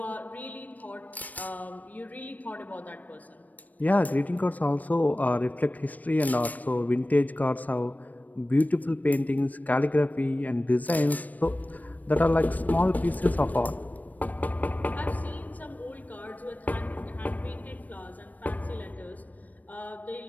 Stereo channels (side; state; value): right; late; 0.078 ms